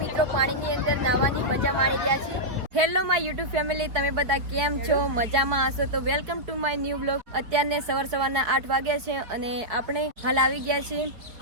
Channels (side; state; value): left; late; 4.3 ms